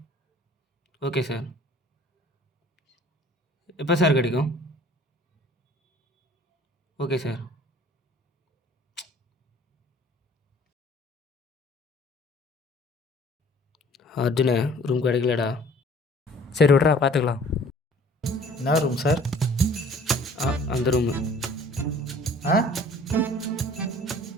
Okay sir. எப்போ சார் கிடைக்கும்? Okay sir. அர்ஜுனே, ரூம் கிடைக்கலடா. சரி விட்றா, பார்த்துக்கலாம். என்ன ரூம் சார்? அந்த ரூமு. ஆ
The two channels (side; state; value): both; normal; correlation 0.52